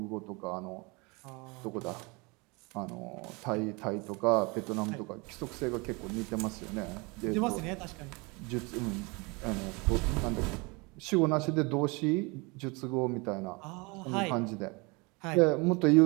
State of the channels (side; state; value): left; quieter; 28.0 dB